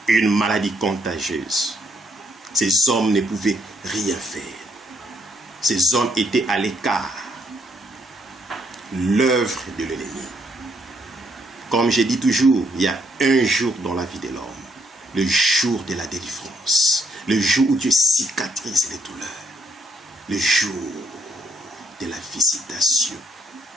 une maladie contagieuse. Ces hommes ne pouvaient rien faire. Ces hommes étaient à l'écart. L'œuvre de l'ennemi. Comme je dis toujours, il y a un jour dans la vie de l'homme, le jour de la délivrance, Le jour où Dieu cicatrise les douleurs. Le jour de la visitation.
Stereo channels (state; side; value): normal; both; correlation 0.73